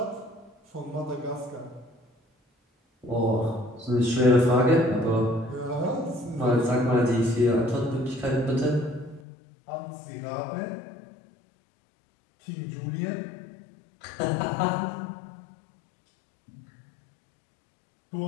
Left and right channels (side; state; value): right; drops out; at 9.2 s